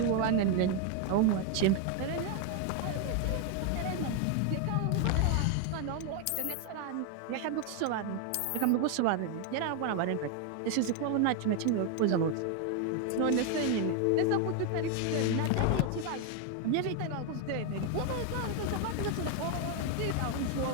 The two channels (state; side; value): different; both; correlation 0.01